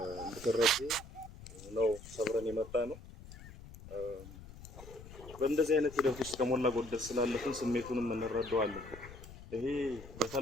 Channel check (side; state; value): left; noise; rumble, 16 dB below the sound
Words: እንድትረዱ ነው ሰብረን የመጣ ነው። በእንደዚህ አይነት ሂደት ውስጥ ከሞላ ጎደል ስላለፍን ስሜቱንም እንረዳዋለን። ይሄ